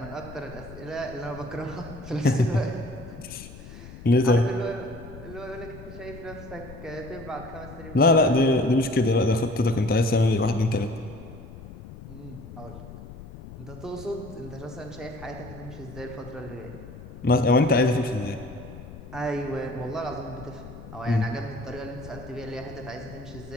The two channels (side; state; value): left; noise; rumble, 15 dB below the sound